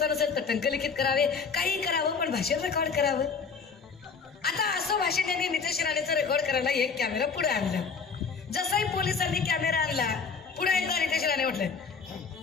नसेल तर टंकलिखित करावे, काही करावं पण भाषण रेकॉर्ड करावं. आता असं भाषण त्यांनी नितेश राणेचं रेकॉर्ड करायला एक कॅमेरा पुढे आणला. जसाही पोलिसांनी कॅमेरा आणला पुढे एकदा नितेश राणे म्हटले,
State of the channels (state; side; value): quieter; right; 5.4 dB